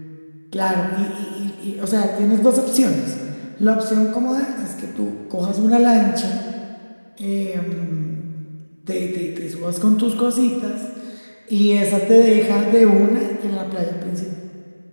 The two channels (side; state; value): both; inverted; correlation -1.00